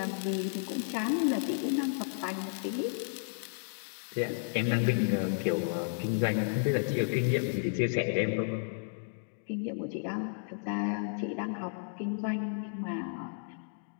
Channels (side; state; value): right; silent; digital silence